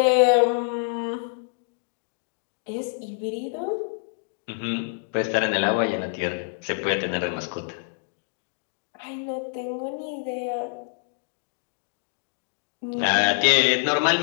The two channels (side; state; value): right; silent; digital silence